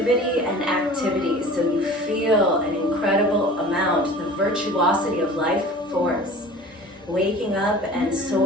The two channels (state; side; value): normal; both; correlation 0.42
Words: and activity. So you feel an incredible amount, the virtuosity of life force, waking up and